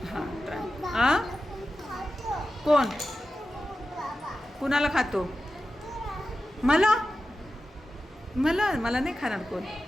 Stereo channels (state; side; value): normal; both; correlation 0.93